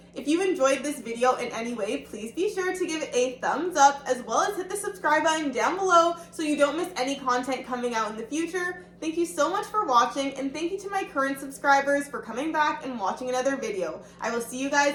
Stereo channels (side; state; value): both; identical; correlation 1.00